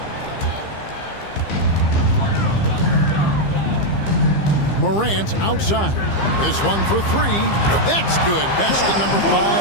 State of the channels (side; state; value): right; late; 15 ms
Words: Morant outside. This one for 3. That's good. Basket number